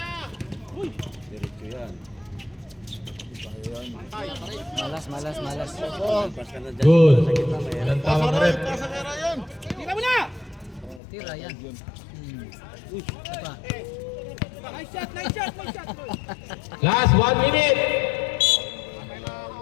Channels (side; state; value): right; drops out; at 11.0 s